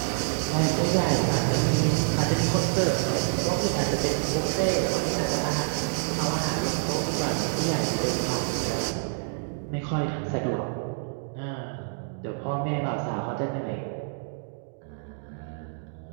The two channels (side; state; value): left; silent; digital silence